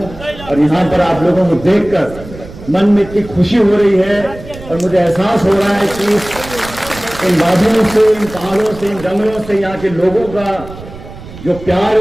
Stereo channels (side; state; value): right; noise; rumble, 15 dB below the sound